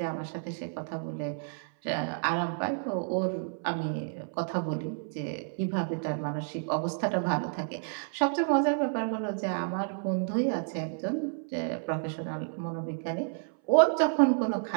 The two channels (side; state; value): left; silent; 58 dB below the other